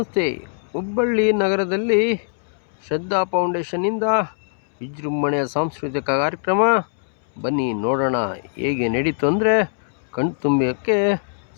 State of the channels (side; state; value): right; silent; 65 dB below the other